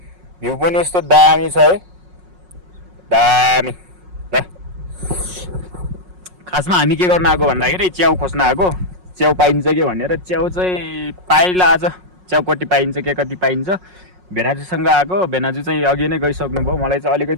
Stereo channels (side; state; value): left; late; 5.5 ms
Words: भ्यू पनि यस्तो दामी छ है, दामी। ल खासमा हामी के गर्न आएको भन्दाखेरि च्याउ खोज्न आएको। च्याउ पाइन्छ कि भनेर च्याउ चाहिँ पाइला आज। च्याउ कति पाइन्छ के कति पाइन्छ भेनाजुसँग आएको। भेनाजु चाहिँ अघि नै गइसक्नु भयो। मलाई चाहिँ